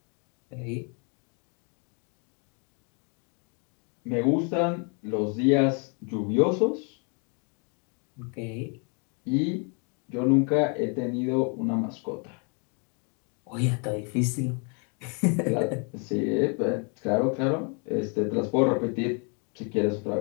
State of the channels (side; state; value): right; quieter; 37.5 dB